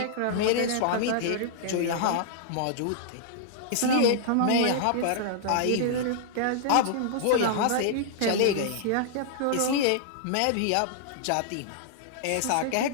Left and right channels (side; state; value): both; different; correlation -0.01